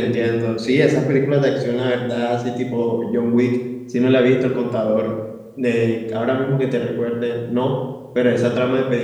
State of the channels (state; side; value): identical; both; correlation 1.00